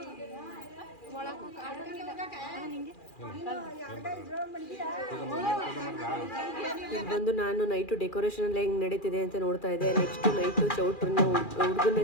ಇದು ಬಂದು ನಾನು ನೈಟು ಡೆಕೋರೇಷನ್ ಎಲ್ಲ ಹೆಂಗೆ ನಡೀತಿದೆ ಅಂತ ನೋಡ್ತಾ ಇದ್ದೆ. ನೆಕ್ಸ್ಟ್ ನೈಟು ಚೌಟ್ರನ್ನ ಹುಡುಗನ್ನ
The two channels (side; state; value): right; late; 2.4 ms